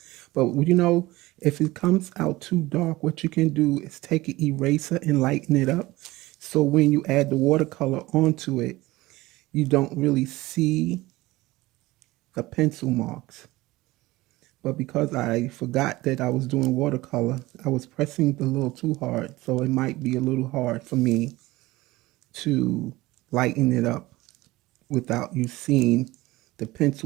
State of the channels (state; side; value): quieter; left; 19.3 dB